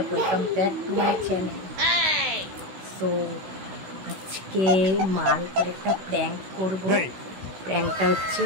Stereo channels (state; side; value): late; left; 16 ms